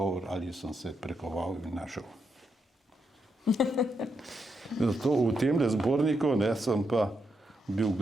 ali sem se prekoval in našel. Zato v tem zborniku, ne, sem pa bil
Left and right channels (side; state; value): both; normal; correlation 0.82